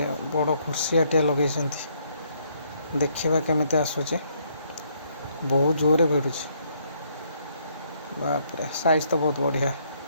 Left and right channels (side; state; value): both; inverted; correlation -0.70